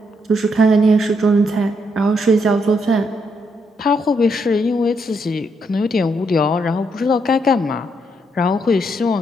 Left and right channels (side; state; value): both; normal; correlation 0.77